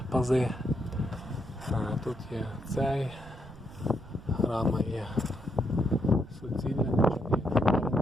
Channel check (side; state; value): right; noise; rumble, 18 dB below the sound